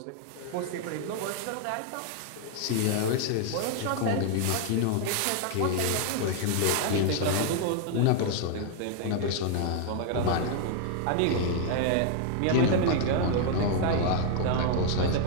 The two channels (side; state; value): both; different; correlation 0.00